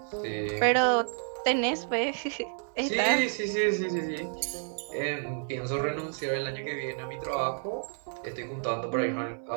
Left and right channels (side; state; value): left; silent; digital silence